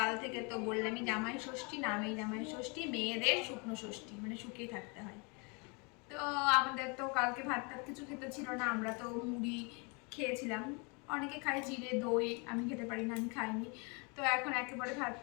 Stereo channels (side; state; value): right; quieter; 32.1 dB